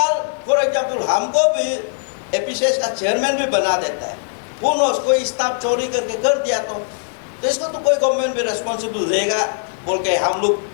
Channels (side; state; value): right; silent; digital silence